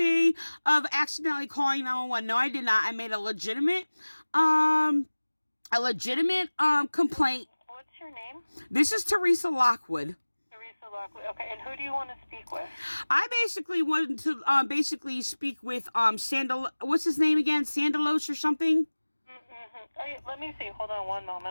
of accidentally calling 911. No, I did not. I made a legitimate complaint. What's your name? This is Teresa Lockwood. Okay, and who do you want to speak with? I basically wanted to speak with what's his name again? Sandalos or something? Mm-hmm. Let me see. Hold on one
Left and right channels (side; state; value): both; inverted; correlation -1.00